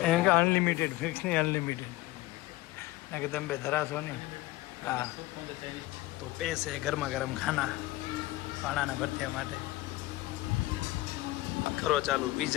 એમ કે અનલિમિટેડ ફિક્સ નહીં અનલિમિટેડ ના કે તમે બે ધરાશો નહીં. હા તો પૈસે ગરમા ગરમ ખાના પાણાના ભરત્યા માટે કરો ચાલુ.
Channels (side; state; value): right; quieter; 18.5 dB